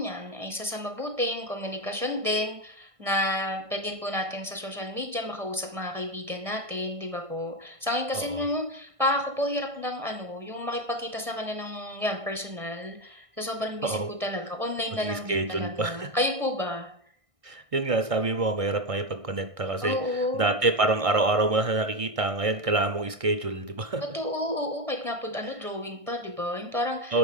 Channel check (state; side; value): late; left; 1.6 ms